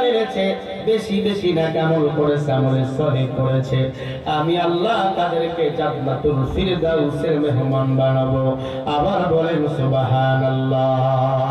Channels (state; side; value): identical; both; correlation 1.00